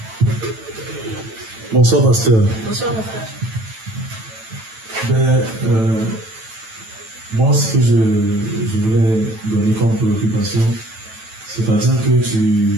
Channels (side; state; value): left; late; 9.1 ms